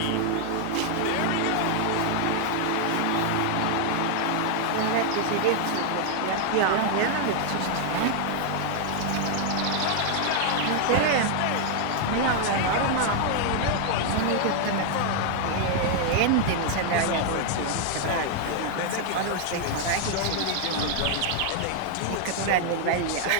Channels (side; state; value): both; different; correlation 0.00